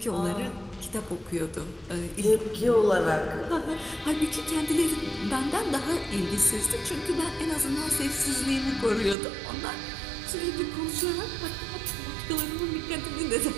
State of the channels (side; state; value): left; drops out; at 9.2 s